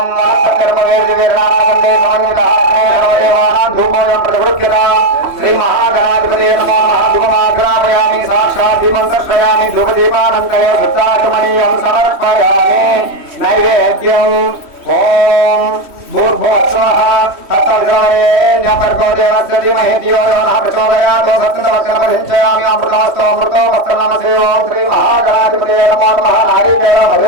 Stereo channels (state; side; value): late; left; 3.1 ms